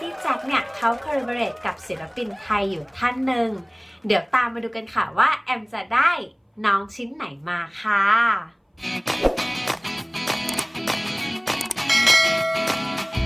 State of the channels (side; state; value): both; identical; correlation 1.00